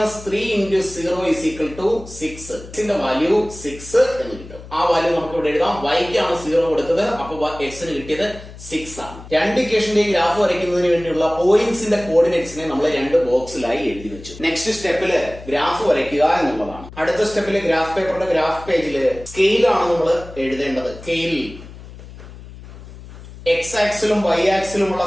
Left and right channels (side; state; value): left; noise; hum, 16 dB below the sound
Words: × 0 = 6. എക്സിന്റെ വാല്യൂ 6 എന്ന് കിട്ടും. ആ വാല്യൂ നമുക്ക് ഇവിടെ എഴുതാം. വൈക്കാണ് 0 കൊടുത്തത്, അപ്പൊ എക്സിന് കിട്ടിയത് 6 ആണ്. രണ്ട് ഇക്വേഷന്റെ ഗ്രാഫ് വരയ്ക്കുന്നതിന് വേണ്ടിയുള്ള പോയിന്റ്സിന്റെ കോർഡിനേറ്റ്സിനെ നമ്മൾ രണ്ട് ബോക്സിലായി എഴുതി വെച്ചു. നെക്സ്റ്റ് സ്റ്റെപ്പില് ഗ്രാഫ് വരയ്ക്കുക എന്നുള്ളതാണ്. അടുത്ത സ്റ്റെപ്പില് ഗ്രാഫ് പേപ്പറിന്റെ ഗ്രാഫ് പേജില് സ്കെയിലാണ് നമ്മൾ എഴുതേണ്ടത്. സ്കെയിൽ എക്സ് ആക്സിലും വൈ ആക്സിലുമുള്ള